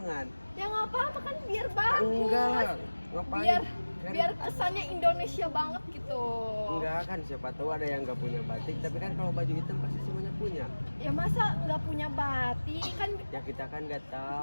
Ya nggak apa-apa kan biar bagus. Enggak lah, ngapain? Biar Kan- biar kesannya Indonesia banget gitu. Enggak kan, siapa tahu ada yang nggak punya batik. Tapi kan kalau baju hitam pasti semuanya punya. Ya masa nggak punya batik kan Ya kita kan nggak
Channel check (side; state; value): both; inverted; correlation -1.00